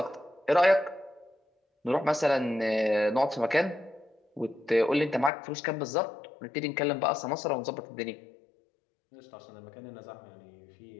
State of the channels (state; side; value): drops out; right; at 5.3 s